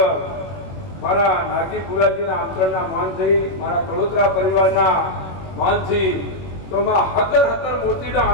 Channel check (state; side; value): late; right; 21 ms